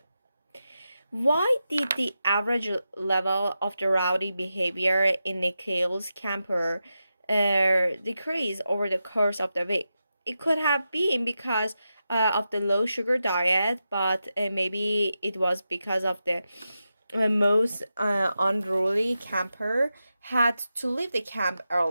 Why did the average level of the rowdy behavior in Nikhil's camper decrease over the course of the week? It could have been because of the low sugar diet, but maybe it was because of the most unruly camper had to leave the camp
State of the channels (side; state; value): both; inverted; correlation -0.90